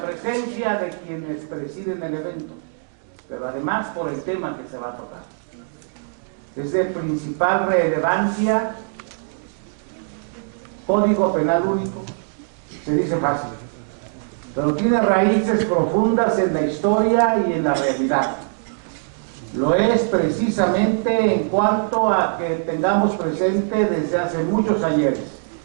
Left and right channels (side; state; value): left; silent; digital silence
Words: presencia de quienes presiden el evento, pero además por el tema que se va a tocar. Es de principal relevancia, Código Penal Único. Se dice fácil, pero tiene raíces profundas en la historia y en la realidad. Lo es precisamente en cuanto a que tengamos presente desde hace muchos ayeres